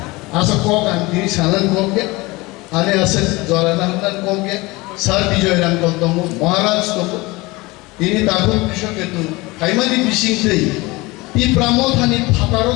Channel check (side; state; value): right; quieter; 22.6 dB